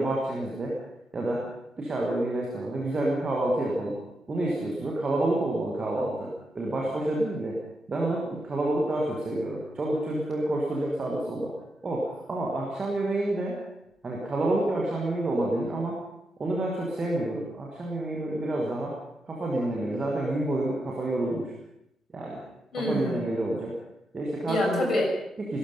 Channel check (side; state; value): both; normal; correlation 0.85